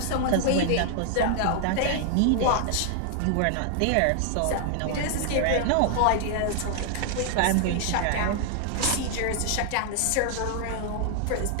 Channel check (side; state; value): both; different; correlation 0.00